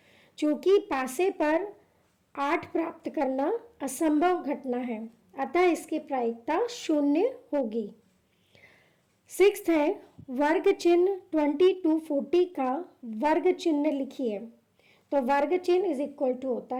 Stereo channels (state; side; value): identical; both; correlation 1.00